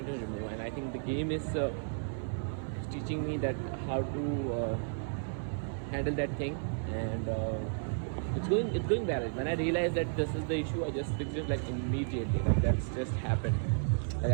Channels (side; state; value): left; silent; 56 dB below the other